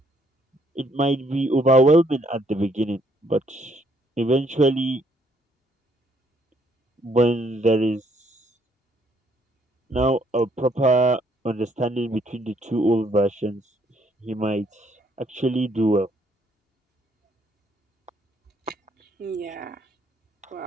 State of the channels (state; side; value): normal; both; correlation 0.68